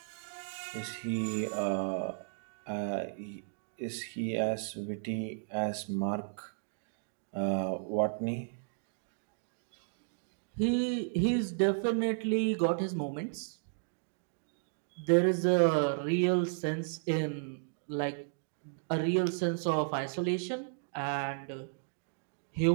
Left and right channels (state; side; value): silent; left; digital silence